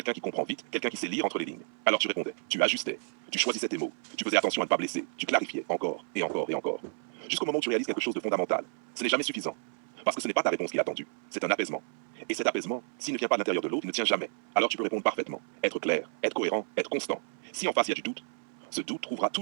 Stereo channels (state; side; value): silent; left; 57 dB below the other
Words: qui comprend vite, quelqu'un qui sait lire entre les lignes. Alors tu répondais, tu ajustais, tu choisissais tes mots, tu faisais attention à ne pas blesser, tu clarifiais encore et encore et encore. Jusqu'au moment où tu réalises quelque chose de fondamental. Ce n'est jamais suffisant. Parce que ce n'est pas ta réponse qui est attendue, c'est un apaisement. Et cet apaisement, s'il ne vient pas de l'intérieur de l'autre, il ne tient jamais. Alors tu peux répondre parfaitement, être clair, être cohérent, être constant. Si en face il y a du doute, ce doute trouvera